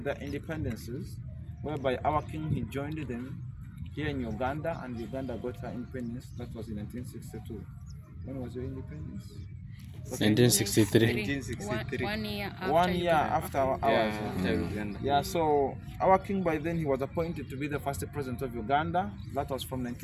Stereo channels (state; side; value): identical; both; correlation 1.00